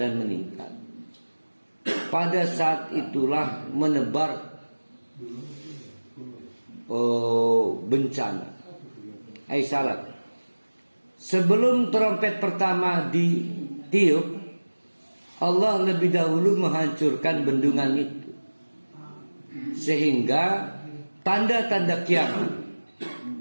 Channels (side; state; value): both; inverted; correlation -1.00